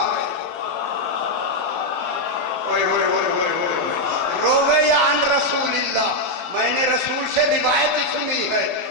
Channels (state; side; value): late; right; 12 ms